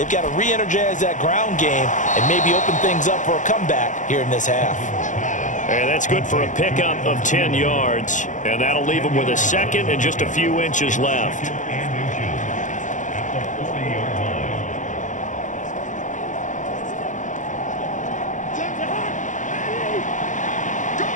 got to re-energize that ground game and maybe open things up for a comeback here in this half. And that's good for a pickup of 10 yards. And that'll leave them with a second and just a few inches left.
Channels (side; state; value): right; late; 0.37 ms